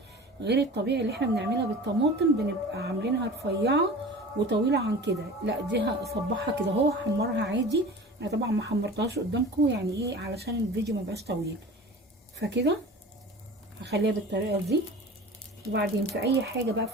غير الطبيعي اللي احنا بنعملها بالطماطم بنبقى عاملينها رفيعه وطويله عن كده. لا، دي هصبحها كده، هو حمرها عادي. انا طبعا ما حمرتهاش قدامكم، يعني ايه، علشان الفيديو ما يبقاش طويل. فكده هخليها بالطريقه دي. وبعدين في اي حاجه بقى،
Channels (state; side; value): normal; both; correlation 0.38